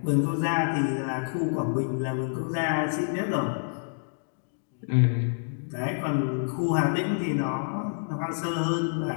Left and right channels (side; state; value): right; silent; digital silence